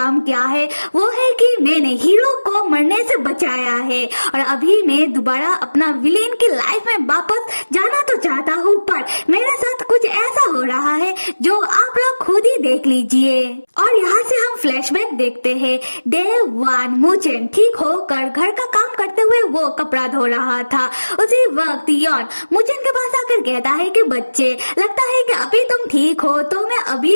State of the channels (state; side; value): inverted; both; correlation -1.00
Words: किया है, वो है कि मैंने हीरो को मरने से बचाया है और अभी मैं दोबारा अपना विलेन की लाइफ में वापस जाना तो चाहता हूँ, पर मेरे साथ कुछ ऐसा हो रहा है जो आप लोग खुद ही देख लीजिए। और यहाँ से हम फ्लैशबैक देखते हैं। डे 1 मूचेन ठीक होकर घर का काम करते हुए वो कपड़ा धो रहा था। उसी वक्त योन मूचेन के पास आकर कहता है कि बच्चे, लगता है कि अभी तुम ठीक हो तो मैं